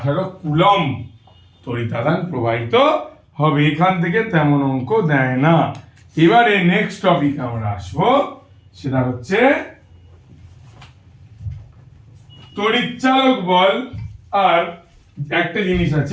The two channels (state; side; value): identical; both; correlation 1.00